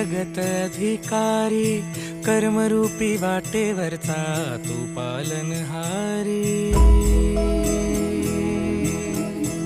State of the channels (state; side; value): identical; both; correlation 1.00